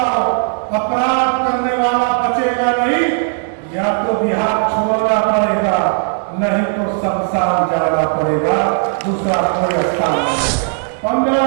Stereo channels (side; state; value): left; silent; 69 dB below the other